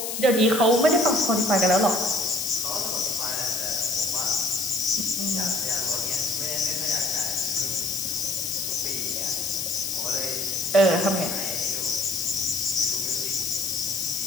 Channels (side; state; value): left; noise; hiss, 4 dB below the sound